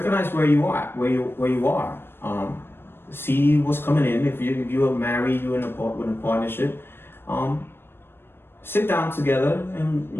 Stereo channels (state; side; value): late; right; 0.11 ms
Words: where you are. See what's coming in. If you are married, you're in a partnership. Sit down together and,